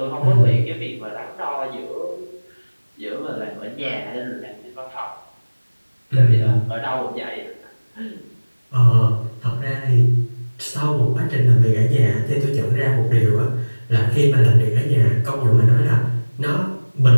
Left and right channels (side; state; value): both; inverted; correlation -1.00